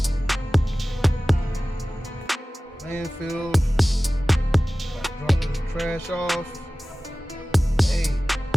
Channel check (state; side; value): normal; both; correlation 0.97